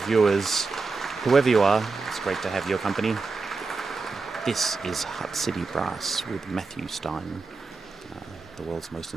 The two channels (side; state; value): left; quieter; 4.1 dB